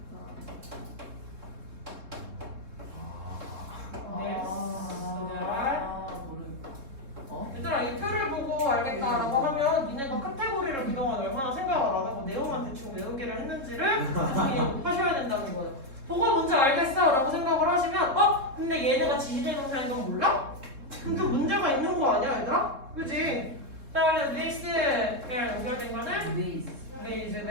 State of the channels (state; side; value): late; left; 3.7 ms